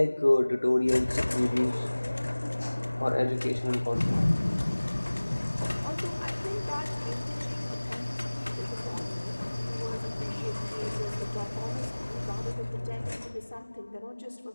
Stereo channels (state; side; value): inverted; both; correlation -1.00